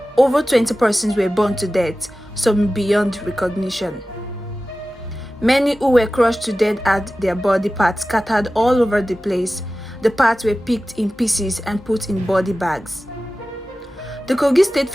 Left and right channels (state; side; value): normal; both; correlation 0.95